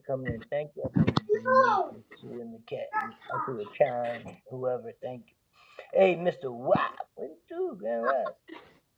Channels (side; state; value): both; identical; correlation 1.00